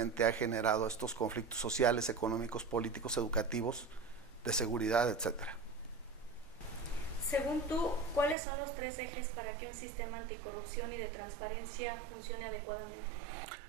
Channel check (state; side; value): drops out; left; at 8.3 s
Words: ha generado estos conflictos sociales, económicos, políticos, educativos, de seguridad, etcétera. Según tú, ¿cuáles son los 3 ejes para que un sistema anticorrupción y de transparencia funcione adecuadamente?